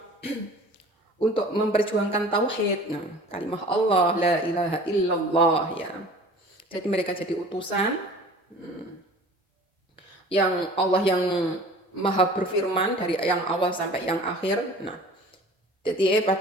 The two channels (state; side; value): normal; both; correlation 0.44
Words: untuk memperjuangkan tauhid, kalimah Allah la ilaha illallah ya. Jadi mereka jadi utusan yang Allah yang maha berfirman dari yang awal sampai yang akhir. Nah, jadi